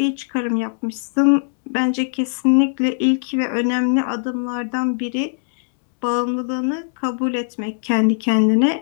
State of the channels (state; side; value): silent; right; digital silence